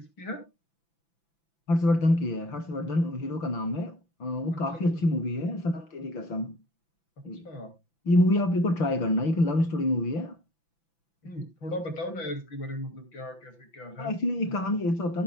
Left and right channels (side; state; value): right; late; 5.9 ms